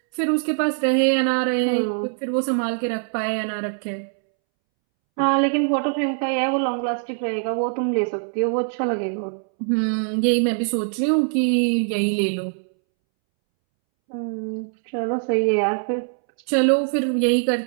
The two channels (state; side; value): silent; left; 64 dB below the other